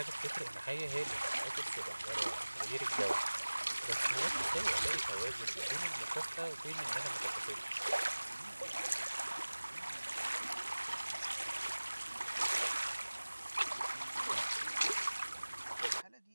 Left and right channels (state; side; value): inverted; both; correlation -1.00